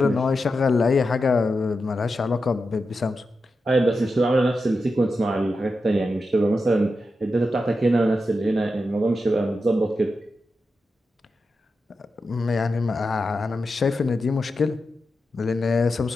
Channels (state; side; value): normal; both; correlation 0.89